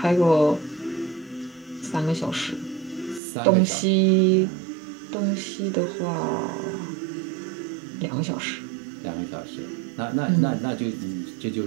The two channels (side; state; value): left; drops out; at 3.2 s